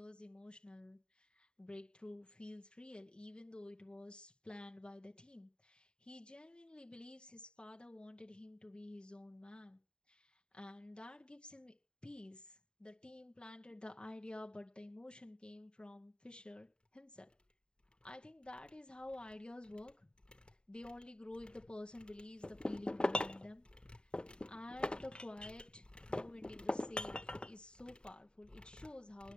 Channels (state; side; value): late; right; 0.049 ms